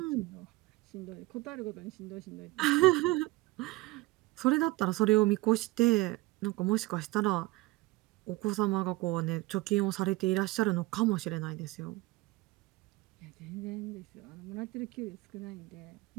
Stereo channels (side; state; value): left; quieter; 20.9 dB